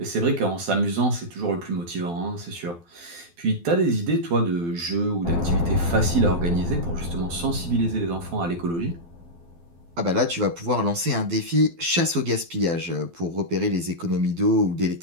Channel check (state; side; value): late; left; 12 ms